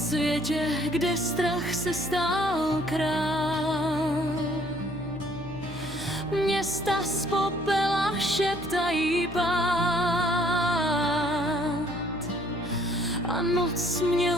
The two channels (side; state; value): left; noise; hum, 14 dB below the sound